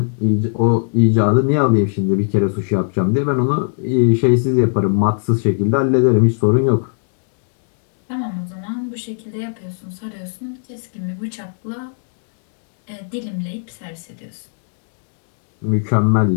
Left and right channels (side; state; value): right; silent; digital silence